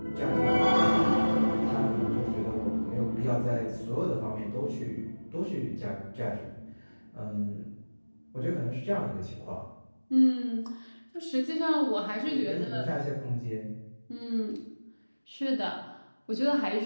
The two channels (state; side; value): inverted; both; correlation -1.00